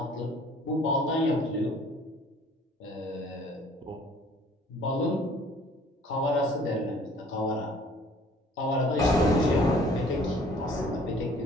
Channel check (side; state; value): both; normal; correlation 0.54